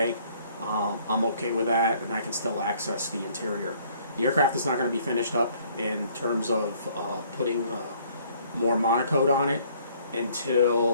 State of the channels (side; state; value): both; inverted; correlation -0.61